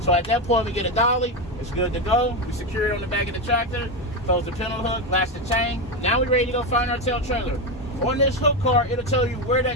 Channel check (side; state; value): both; normal; correlation 0.12